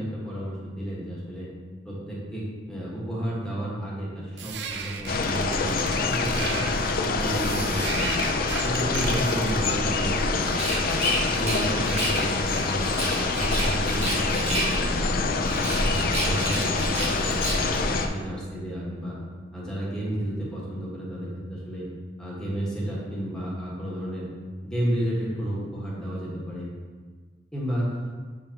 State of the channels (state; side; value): normal; both; correlation 0.41